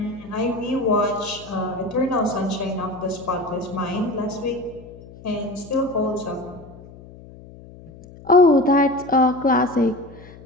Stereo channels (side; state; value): left; noise; hum, 19 dB below the sound